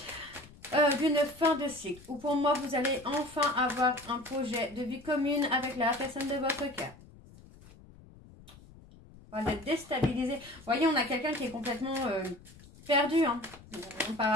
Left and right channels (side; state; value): left; noise; rumble, 22 dB below the sound